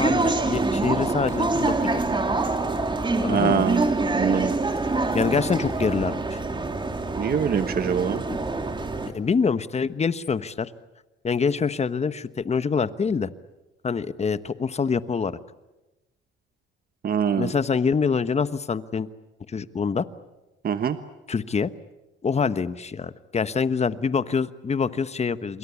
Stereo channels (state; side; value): normal; both; correlation 0.56